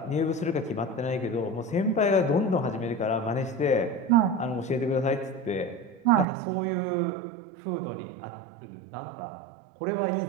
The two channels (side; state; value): left; drops out; at 6.2 s